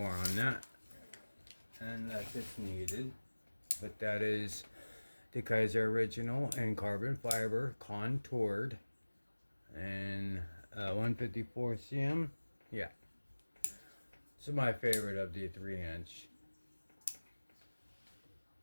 on that unless it's needed, but that is the Kizer Original in carbon fiber, contoured, and 154 cm. Yeah, this is my favorite of the 3-inch.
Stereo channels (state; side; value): inverted; both; correlation -1.00